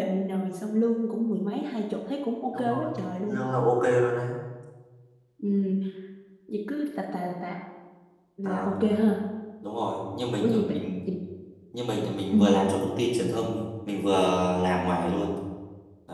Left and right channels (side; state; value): both; identical; correlation 1.00